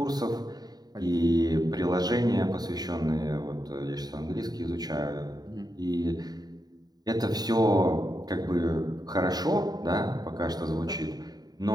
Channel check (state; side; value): late; left; 0.19 ms